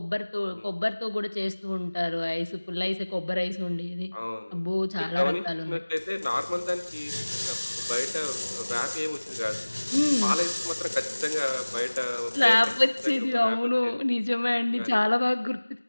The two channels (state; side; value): inverted; both; correlation -1.00